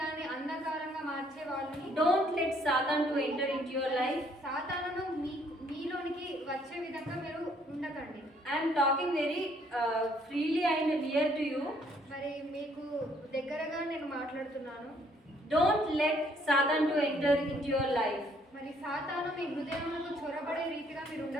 అంధకారంగా మార్చే వాళ్ళని Don't let Satan to enter into your life. సాతానును మీలోనికి వచ్చే విధంగా మీరు ఉండకండి. I am talking very freely and near to you. మరి మీకు దగ్గరగా నేను మాట్లాడుతున్నాను. Don't let Satan to enter into your life. మరి సాతాను మీ హృదయంలో చొరబడే రీతిగా మీరు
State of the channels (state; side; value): normal; both; correlation 0.65